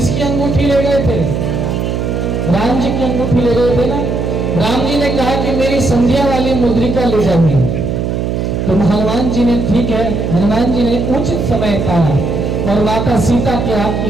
अंगूठी ले गए थे? राम जी की अंगूठी ले गए थे ना। राम जी ने कहा कि मेरी संध्या वाली मुद्रिका ले जाइए। तो हनुमान जी ने, ठीक है, हनुमान जी ने उचित समय पाया और माता सीता के हाथ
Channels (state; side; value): noise; right; hum, 1 dB below the sound